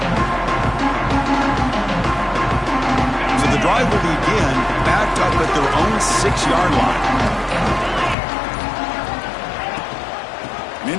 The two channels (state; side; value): drops out; right; at 8.2 s